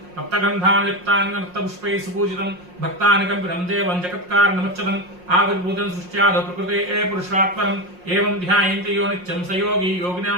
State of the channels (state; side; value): late; left; 5.6 ms